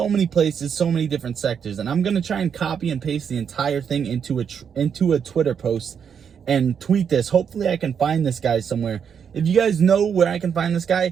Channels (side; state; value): left; quieter; 7.3 dB